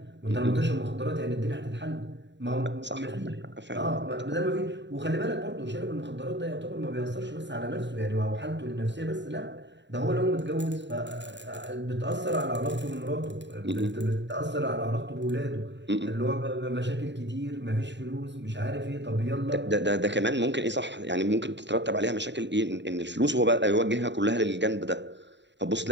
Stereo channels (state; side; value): late; left; 0.52 ms